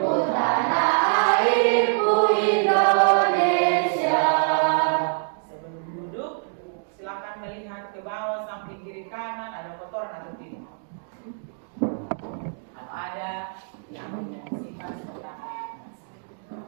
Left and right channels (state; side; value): silent; left; digital silence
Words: airku Indonesia. Sebelum duduk, silakan melihat ke bawah samping kiri kanan ada kotoran atau tidak. Kalau ada yang sifat seperti apa?